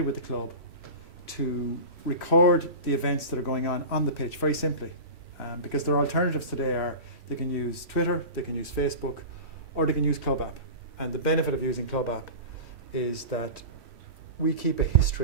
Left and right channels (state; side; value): late; left; 3.1 ms